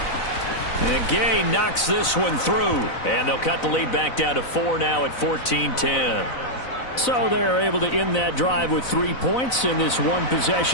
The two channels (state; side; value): late; right; 4.0 ms